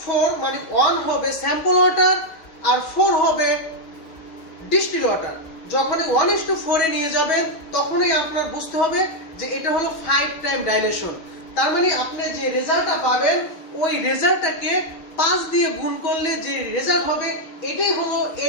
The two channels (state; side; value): late; right; 6.4 ms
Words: মানে 1 হবে স্যাম্পল ওয়াটার আর 4 হবে ডিস্টিল ওয়াটার। যখনই 1:4 এ নিয়ে যাবেন, তখনই আপনার বুঝতে হবে যে এটা হলো 5 টাইম ডাইলেশন। তার মানে আপনি যে রেজাল্টটা পাবেন, ওই রেজাল্টটাকে 5 দিয়ে গুণ করলে যে রেজাল্ট হবে, এটাই হলো